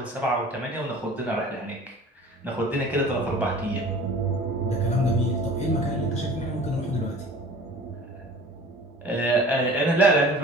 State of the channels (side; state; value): both; normal; correlation 0.44